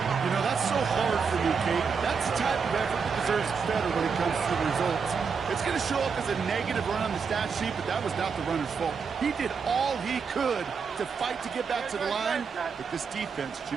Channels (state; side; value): quieter; left; 5.8 dB